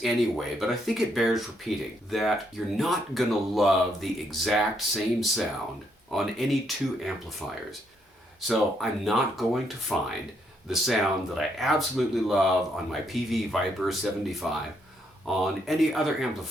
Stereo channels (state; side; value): normal; both; correlation 0.74